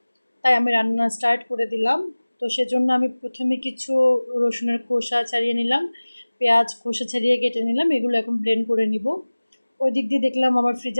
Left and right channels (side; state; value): both; inverted; correlation -1.00